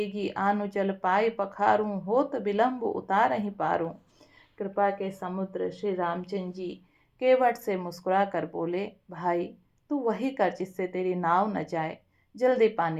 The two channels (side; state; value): both; identical; correlation 1.00